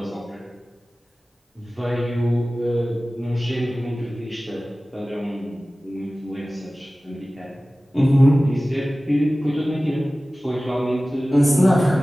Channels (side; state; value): both; normal; correlation 0.97